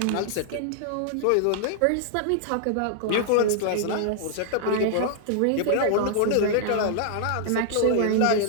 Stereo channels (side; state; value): both; different; correlation -0.01